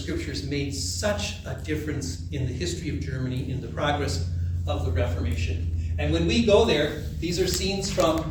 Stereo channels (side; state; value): both; identical; correlation 1.00